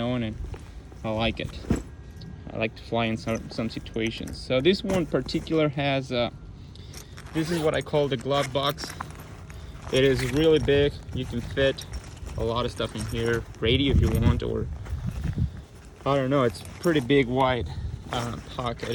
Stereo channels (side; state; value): both; identical; correlation 1.00